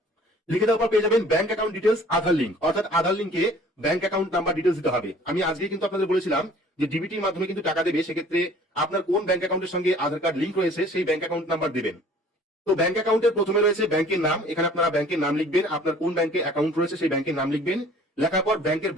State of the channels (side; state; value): both; normal; correlation 0.52